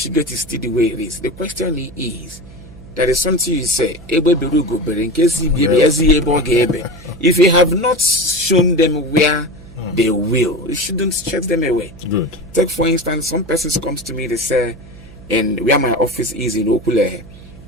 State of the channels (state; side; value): noise; right; hum, 19 dB below the sound